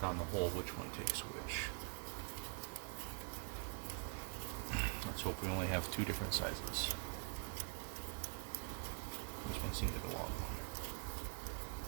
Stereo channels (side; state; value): left; quieter; 37.0 dB